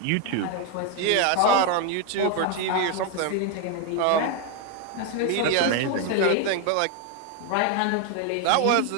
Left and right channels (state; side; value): different; both; correlation 0.01